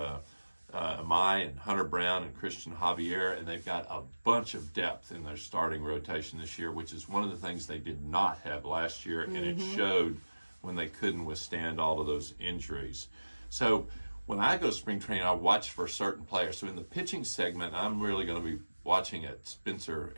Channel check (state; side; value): inverted; both; correlation -1.00